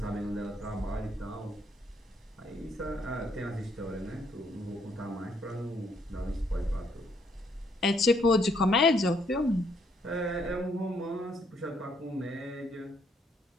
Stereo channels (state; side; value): normal; both; correlation 0.70